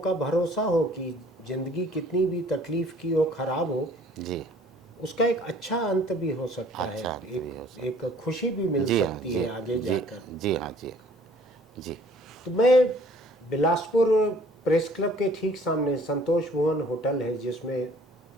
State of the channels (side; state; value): both; normal; correlation 0.55